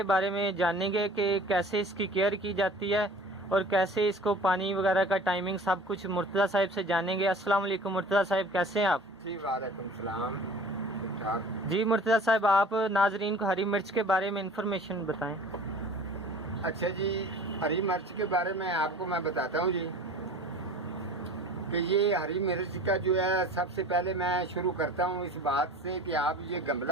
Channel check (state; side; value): normal; both; correlation 0.44